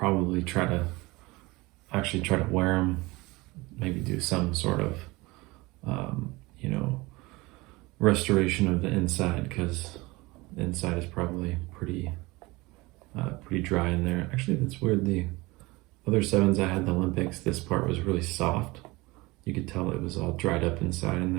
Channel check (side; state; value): left; quieter; 22.5 dB